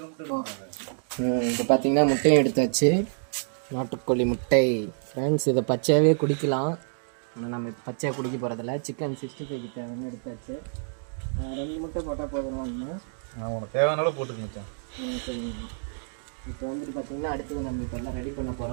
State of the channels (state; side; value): silent; left; digital silence